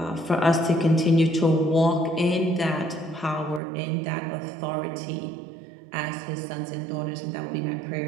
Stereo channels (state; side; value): drops out; left; at 3.6 s